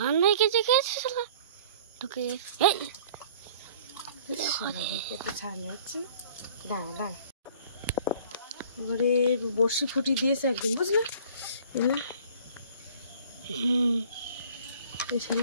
ভাই কেঁচে খেয়েছে শালা তোকে। ছাড় হচ্ছে না, দাঁড়া দাঁড়া। এবারে বড়শি ফুটি দিয়েছে একদম, বুঝলে? এই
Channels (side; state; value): both; inverted; correlation -0.51